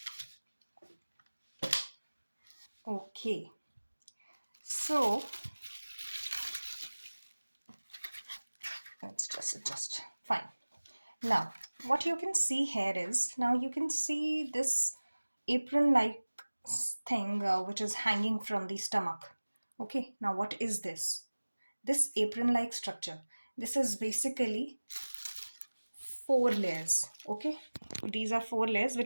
Okay, so let's just adjust. Fine. Now, what you can see here is now you can see this apron like thing which is hanging from the stomach. Okay, now what is this? This apron like structure. This is basically four layers. Okay, these are four layers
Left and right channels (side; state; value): both; inverted; correlation -1.00